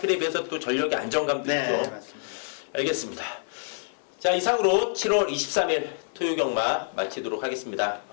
비해서 또 전력의 안정감도 네, 있죠. 맞습니다. 알겠습니다. 자, 이상으로 7월 23일 토요경마 마치도록 하겠습니다.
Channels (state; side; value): silent; right; 60 dB below the other